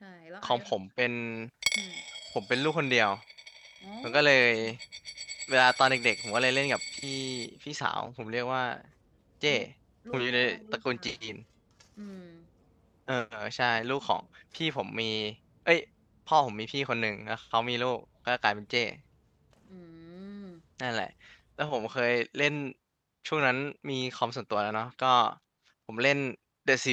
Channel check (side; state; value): both; identical; correlation 1.00